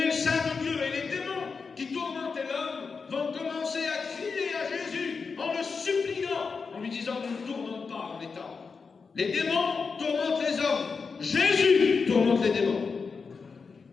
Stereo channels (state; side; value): quieter; right; 5.0 dB